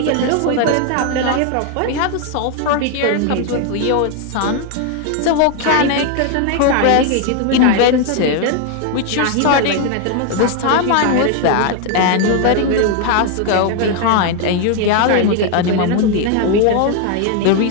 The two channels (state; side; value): different; both; correlation 0.01